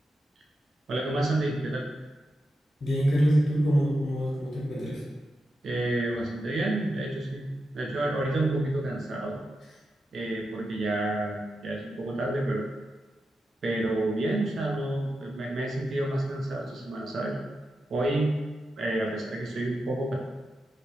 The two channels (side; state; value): both; normal; correlation 0.88